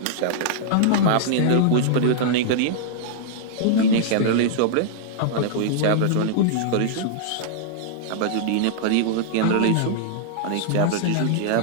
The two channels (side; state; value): both; different; correlation -0.02